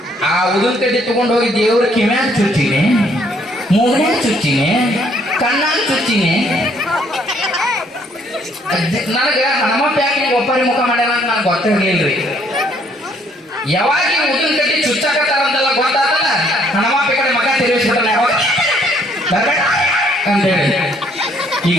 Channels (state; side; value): normal; both; correlation 0.65